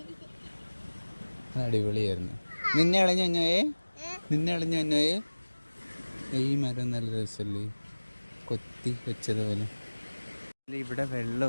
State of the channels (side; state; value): both; inverted; correlation -1.00